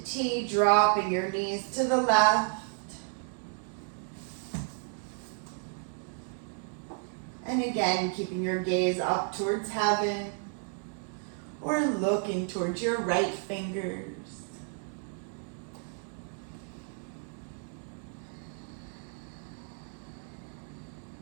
T, dropping your knees to the left. And again, keeping your gaze up towards heaven or looking towards your right fingers.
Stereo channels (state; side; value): silent; left; 56 dB below the other